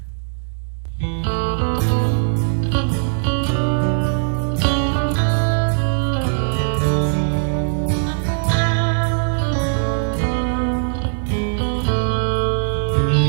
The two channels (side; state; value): left; silent; digital silence